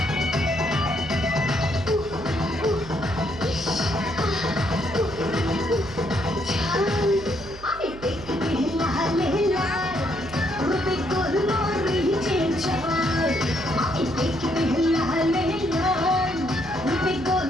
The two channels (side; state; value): right; noise; hum, 16 dB below the sound